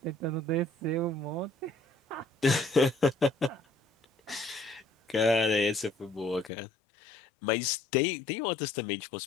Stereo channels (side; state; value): right; drops out; at 6.5 s